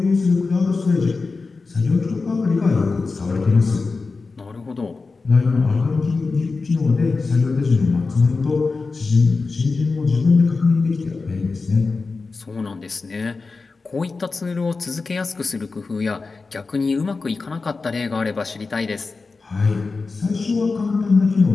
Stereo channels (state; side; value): quieter; right; 4.1 dB